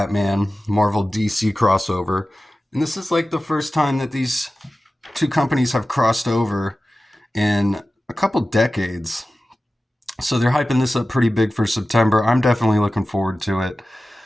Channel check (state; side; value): normal; both; correlation 0.95